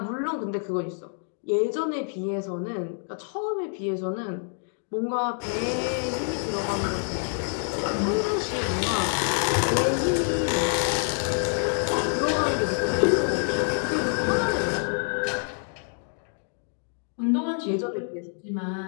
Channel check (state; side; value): silent; right; 57 dB below the other